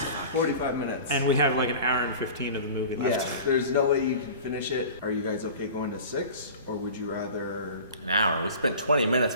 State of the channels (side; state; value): both; inverted; correlation -0.39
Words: 45 minutes. And we have like an hour and 15 of the movie left. Yeah, there's no way you can finish it. Are you guys okay going to 6, or would you rather? An hour. We spent 20 minutes